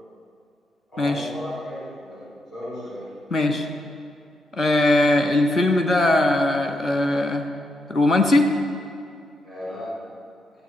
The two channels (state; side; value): normal; both; correlation 0.81